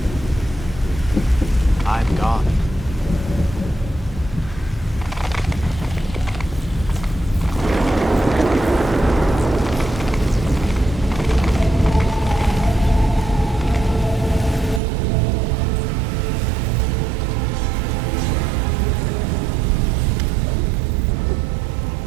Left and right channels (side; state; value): left; drops out; at 14.8 s